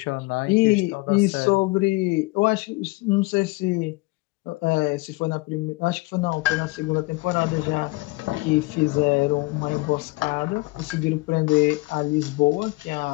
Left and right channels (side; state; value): right; quieter; 23.7 dB